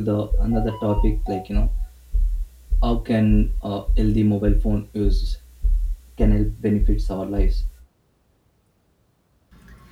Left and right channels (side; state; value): both; identical; correlation 1.00